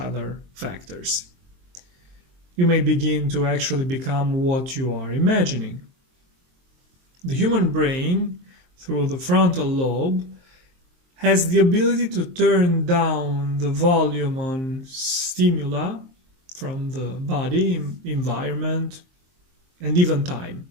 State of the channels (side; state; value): left; late; 23 ms